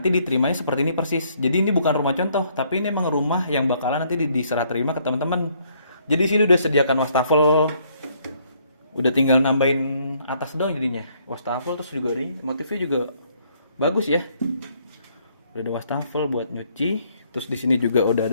diterimanya seperti ini persis. Jadi ini bukan rumah contoh, tapi ini emang rumah yang bakalan nanti diserah terima ke teman-teman. Jadi sini udah sediakan wastafel, udah tinggal nambahin atas doang jadinya wastafel. Terus juga nih motifnya juga bagus ya, udah ada wastafel buat nyuci. Terus di sini juga udah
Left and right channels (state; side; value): inverted; both; correlation -0.67